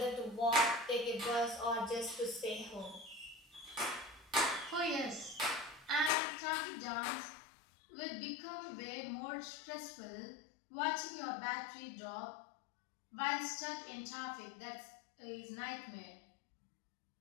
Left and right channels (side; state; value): right; drops out; at 6.1 s